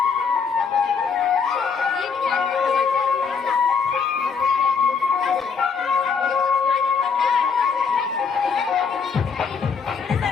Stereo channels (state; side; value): quieter; right; 5.8 dB